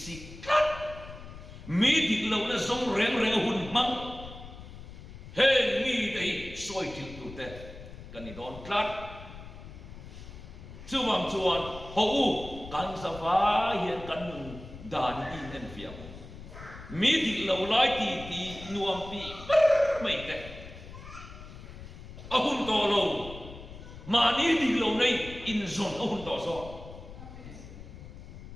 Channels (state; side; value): noise; left; rumble, 14 dB below the sound